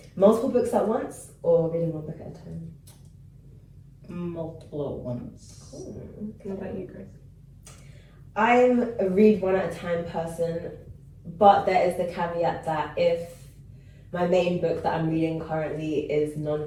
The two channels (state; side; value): identical; both; correlation 1.00